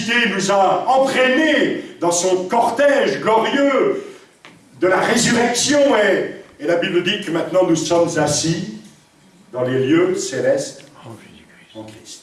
nous a entraînés dans son cortège glorieux de la résurrection et la Bible dit que maintenant nous sommes assis dans les lieux célestes en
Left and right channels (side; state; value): both; identical; correlation 1.00